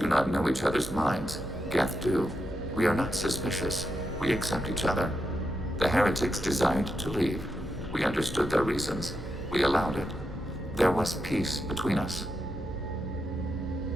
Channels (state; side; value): normal; both; correlation 0.84